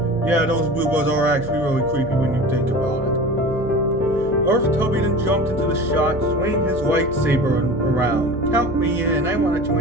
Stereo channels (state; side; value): noise; right; hum, 11 dB below the sound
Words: Yeah, those Boohbahs are actually really creepy when you think about it. Darth Tubby then jumped into the shot, swinging his lightsaber around. Count me in. I want to